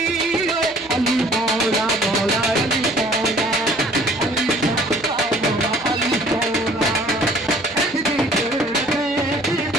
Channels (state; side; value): noise; right; hum, 25 dB below the sound